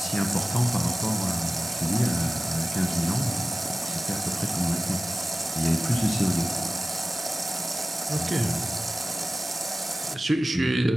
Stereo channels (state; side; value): normal; both; correlation 0.96